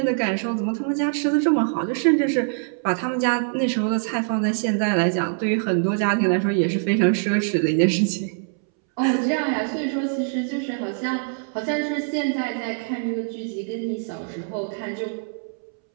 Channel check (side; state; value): left; silent; 63 dB below the other